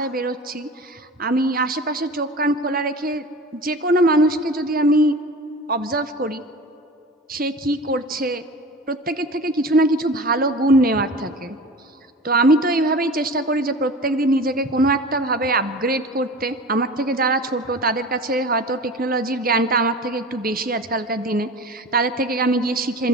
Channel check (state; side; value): normal; both; correlation 0.35